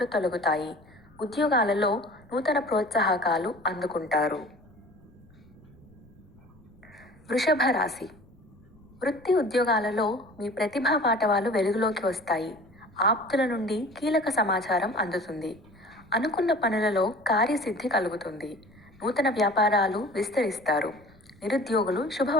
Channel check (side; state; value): left; noise; rumble, 27 dB below the sound